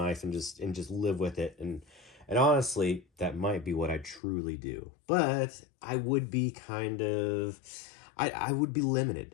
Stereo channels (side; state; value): right; drops out; at 4.2 s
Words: and just live with it. And honestly, that might be what I truly do. But I would be I would be